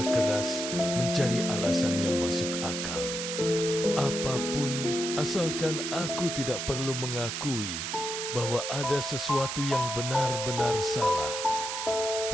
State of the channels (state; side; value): noise; right; hiss, 4 dB below the sound